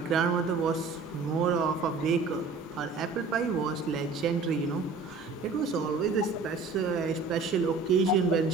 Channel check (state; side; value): quieter; left; 4.3 dB